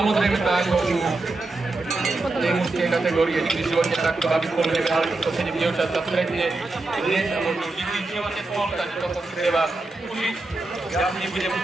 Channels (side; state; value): left; quieter; 3.1 dB